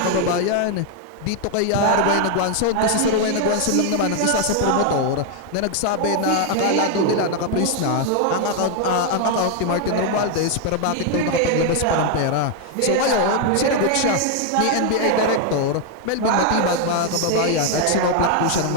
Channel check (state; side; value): different; both; correlation 0.00